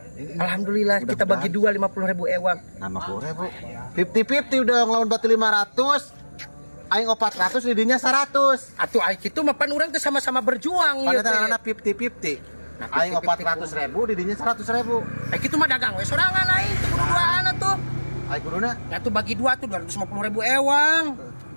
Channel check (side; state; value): both; inverted; correlation -1.00